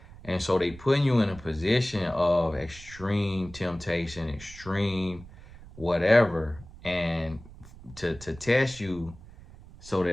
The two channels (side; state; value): right; noise; rumble, 18 dB below the sound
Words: And so they putting you in a position of extreme temptation, extreme whatever, and to test you so